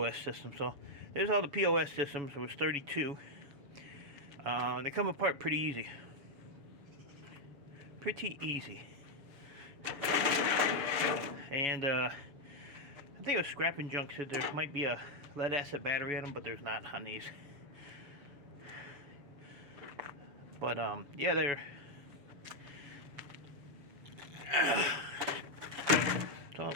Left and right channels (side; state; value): left; late; 7.0 ms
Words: system. So there's all the POS systems. There was 32. They come apart pretty easy. Pretty easy. And I think it was Scrapping Junk said there might be a lead acid battery in them, but there's not on these. But yeah, they're so